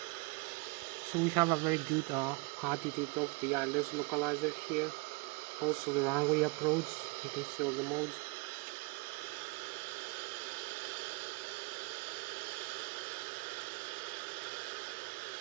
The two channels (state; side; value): quieter; left; 28.6 dB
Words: So we have a very good attitude of the Lszh localizer here. Also the runway approach, you can see all the modes.